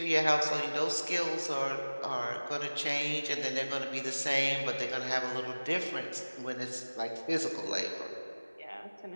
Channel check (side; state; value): both; inverted; correlation -1.00